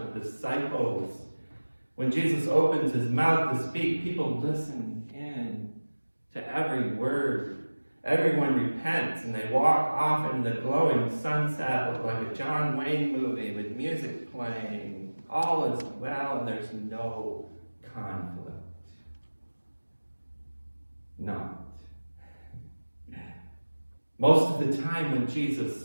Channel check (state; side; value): inverted; both; correlation -1.00